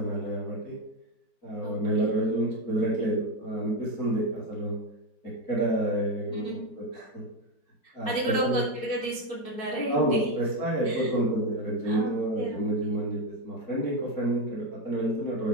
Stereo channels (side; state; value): right; late; 4.6 ms